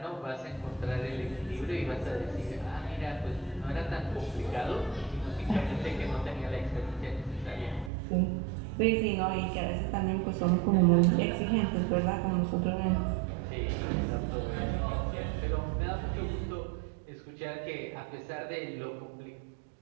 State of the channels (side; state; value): left; drops out; at 7.9 s